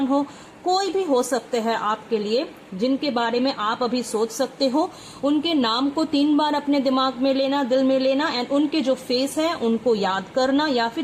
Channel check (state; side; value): identical; both; correlation 1.00